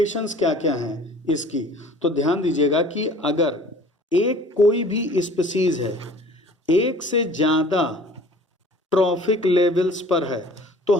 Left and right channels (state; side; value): normal; both; correlation 0.48